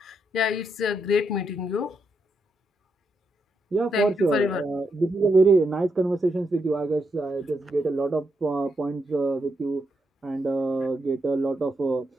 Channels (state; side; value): normal; both; correlation 0.81